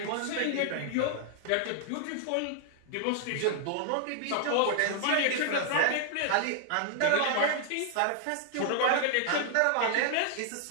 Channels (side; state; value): both; different; correlation -0.01